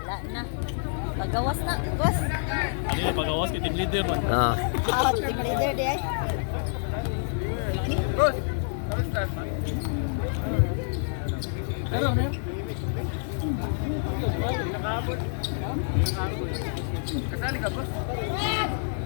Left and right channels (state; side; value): silent; right; digital silence